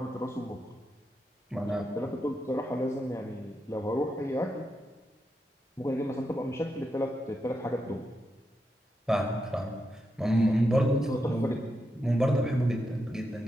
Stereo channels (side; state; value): both; normal; correlation 0.85